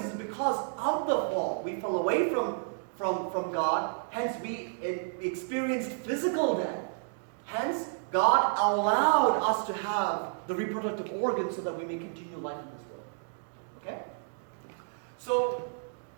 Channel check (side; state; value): left; silent; digital silence